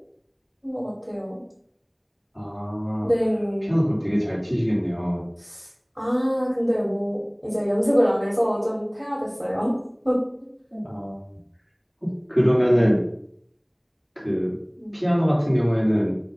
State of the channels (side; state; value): both; identical; correlation 1.00